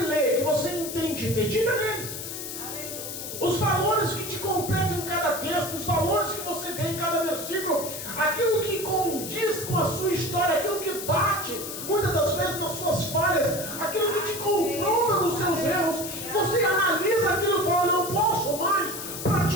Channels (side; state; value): left; noise; hiss, 7 dB below the sound